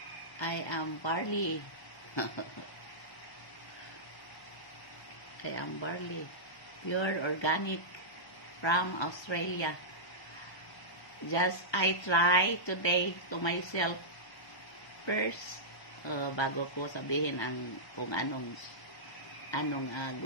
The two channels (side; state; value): right; late; 1.2 ms